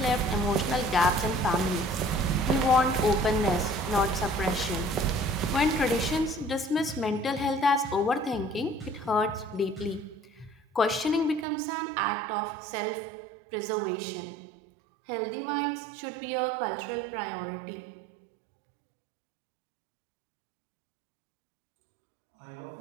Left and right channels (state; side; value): drops out; left; at 11.5 s